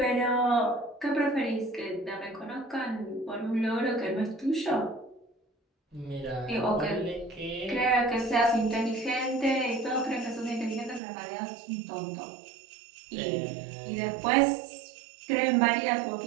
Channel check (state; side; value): drops out; left; at 11.0 s